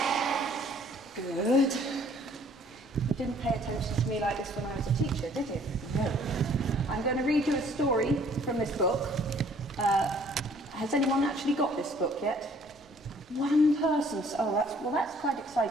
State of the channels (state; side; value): normal; both; correlation 0.58